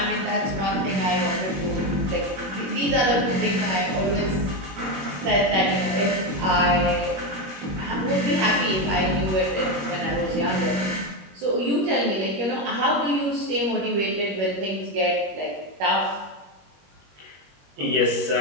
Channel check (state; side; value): late; left; 21 ms